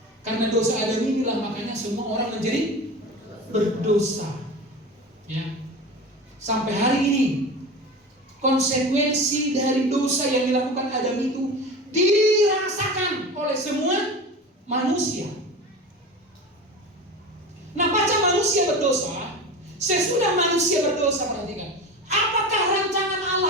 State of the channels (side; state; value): both; normal; correlation 0.31